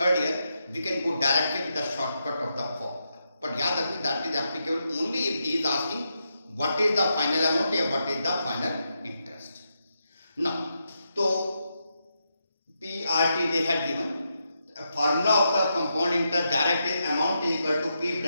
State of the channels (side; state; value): both; inverted; correlation -0.84